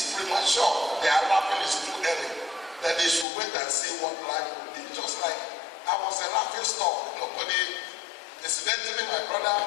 premature. They are laughing, it's too early. That they should wait and see what life will be. Just like I was a laughing stock. Incidentally, my brother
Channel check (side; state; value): right; drops out; at 3.2 s